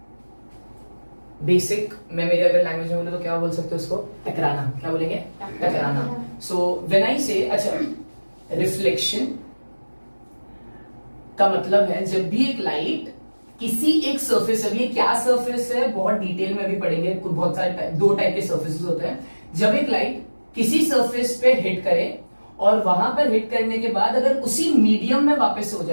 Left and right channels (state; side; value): inverted; both; correlation -1.00